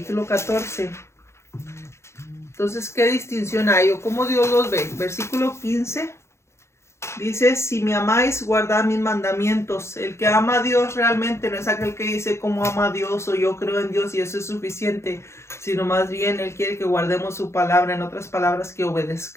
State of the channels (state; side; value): late; right; 0.13 ms